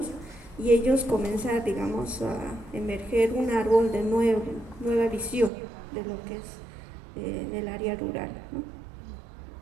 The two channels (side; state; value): left; drops out; at 5.5 s